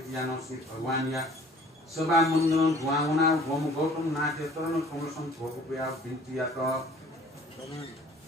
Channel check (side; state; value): both; normal; correlation 0.52